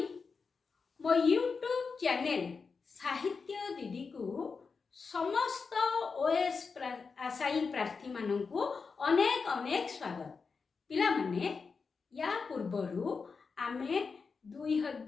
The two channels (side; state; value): right; quieter; 5.0 dB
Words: मो यूट्यूब चैनल साहित्य दीदी को समस्त ओएस आशायी प्रार्थी मानू अनेक अनेक स्वागत। पिला माने या पूर्वरु आमे